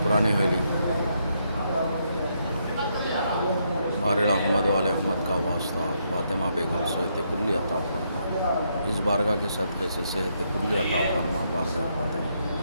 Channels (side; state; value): both; inverted; correlation -0.77